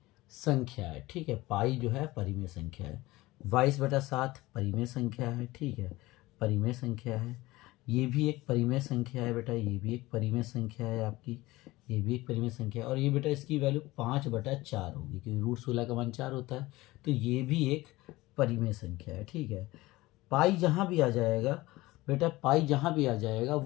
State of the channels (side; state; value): right; quieter; 19.4 dB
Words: संख्या है, ठीक है। पाई जो है परिमेय संख्या है। 22/7 परिमेय संख्या है, ठीक है, परिमेय संख्या है। ये भी एक परिमेय संख्या है बेटा, ये भी एक परिमेय संख्या है आपकी, ये भी एक परिमेय संख्या है। और ये बेटा इसकी वैल्यू 5/4 होगी, क्योंकि √16 का मान 4 होता है, तो ये भी एक परिमेय संख्या है, ठीक है। पाई जहाँ भी आ जाएगा बेटा, पाई जहाँ भी आ जाएगा